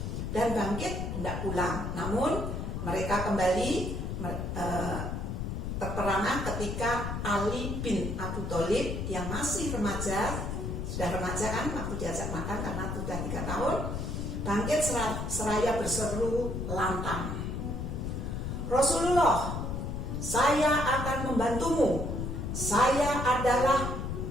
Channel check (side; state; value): left; noise; rumble, 3 dB below the sound